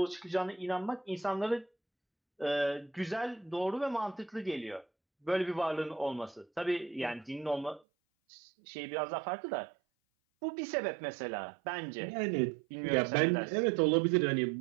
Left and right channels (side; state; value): left; drops out; at 7.8 s